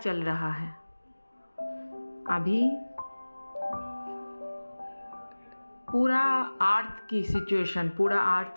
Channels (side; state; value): both; inverted; correlation -1.00